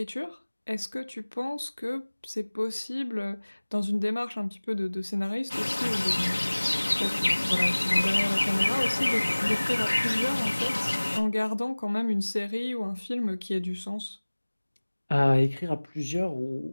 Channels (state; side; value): inverted; both; correlation -1.00